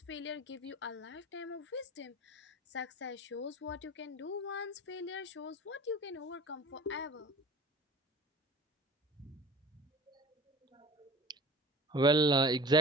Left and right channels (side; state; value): both; normal; correlation 0.40